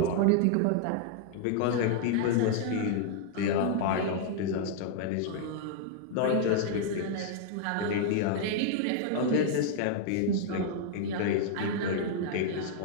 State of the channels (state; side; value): different; both; correlation -0.01